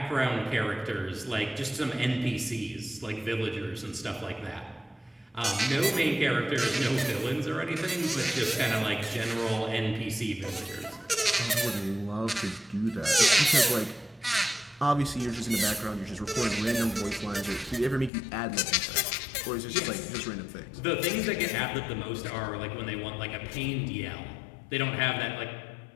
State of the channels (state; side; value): drops out; right; at 18.1 s